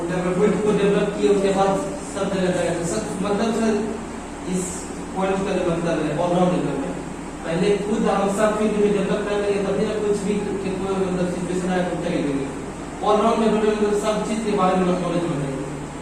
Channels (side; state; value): both; identical; correlation 1.00